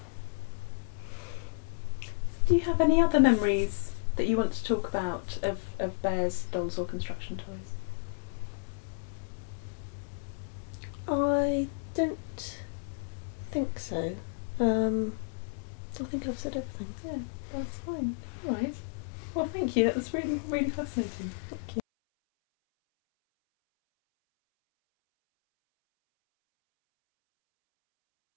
Do you have any other memories that you want to talk about of Bear's dolls or construction toys? I don't think so. I think I've said everything. Yeah, that's fine. All right. Well, thank you. That was really, really fascinating.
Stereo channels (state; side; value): silent; right; 56 dB below the other